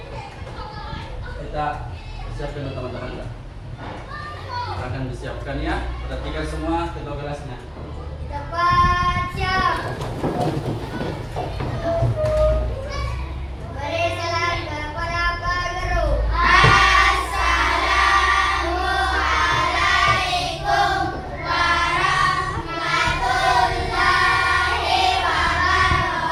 Kita siapkan teman-teman. Akan disiapkan ya. Perhatikan semua ketua kelasnya. Kita baca.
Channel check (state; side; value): identical; both; correlation 1.00